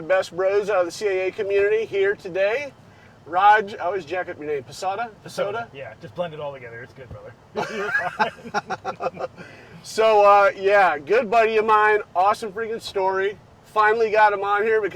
bros out of the CAA community here today. Raj, I always jack up your name. Psota? Yeah, just blend it all together. It's good, brother. So, yeah, good buddy of mine. Awesome freaking story. Finally got him on here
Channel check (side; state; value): both; identical; correlation 1.00